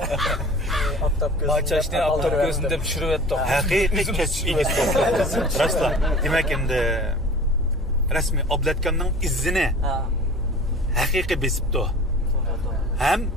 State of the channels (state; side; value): normal; both; correlation 0.42